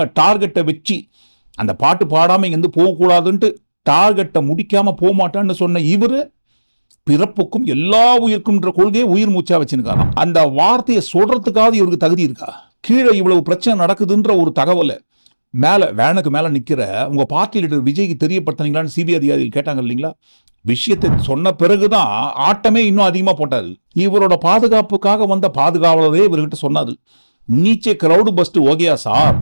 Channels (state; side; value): inverted; both; correlation -1.00